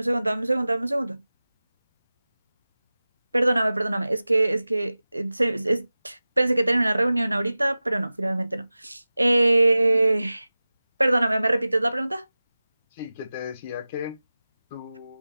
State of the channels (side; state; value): both; inverted; correlation -0.97